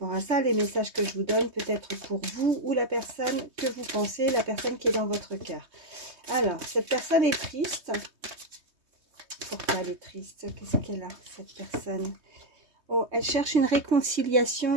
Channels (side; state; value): left; late; 3.2 ms